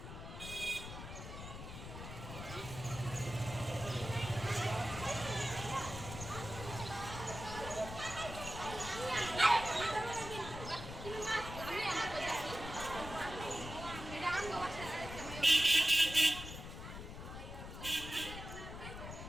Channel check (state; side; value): noise; left; rumble, 9 dB below the sound